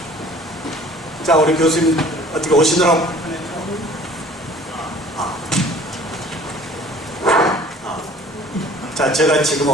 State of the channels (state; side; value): normal; both; correlation 0.50